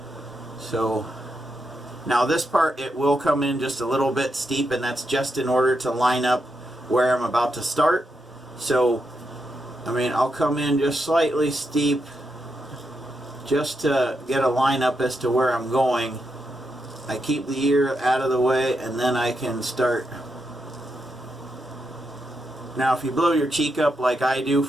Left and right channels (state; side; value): normal; both; correlation 0.83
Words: So now this part, it will come in just a little bit steep, and that's just in order to line up where I'm about to start. So I mean, I'll come in just slightly steep just to get a line up as to where I'm going. I keep the ear out of the way, and then I can start. Now if you blow your cheek up like I do